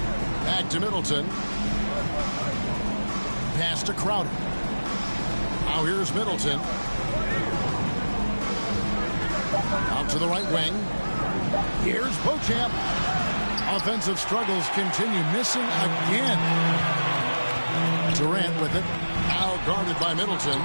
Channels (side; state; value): both; inverted; correlation -1.00